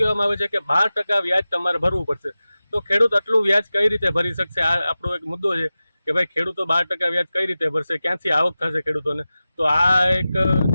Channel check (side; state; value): both; inverted; correlation -0.95